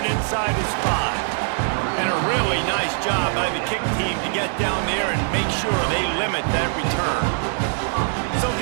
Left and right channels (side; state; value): left; silent; 63 dB below the other